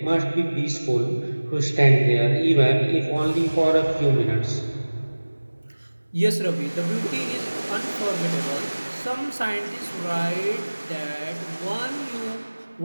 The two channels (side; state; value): both; inverted; correlation -1.00